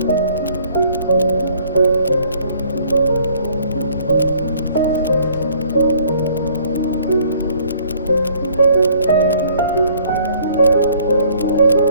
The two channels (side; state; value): both; inverted; correlation -0.59